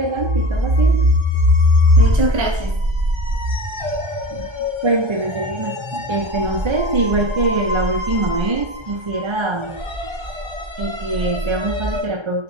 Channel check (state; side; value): late; left; 1.3 ms